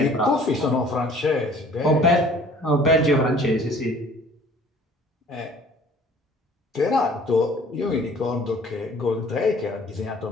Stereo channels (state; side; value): normal; both; correlation 0.52